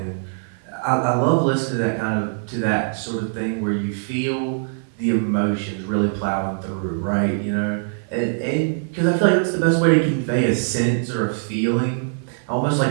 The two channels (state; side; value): silent; left; 58 dB below the other